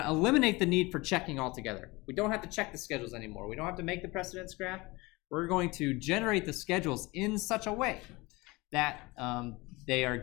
to eliminate the need for checking altogether. We don't have to check the schedules anymore. We don't have to make the precedence graph. We're going to generate the schedules in such a way that they are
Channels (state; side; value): quieter; right; 23.2 dB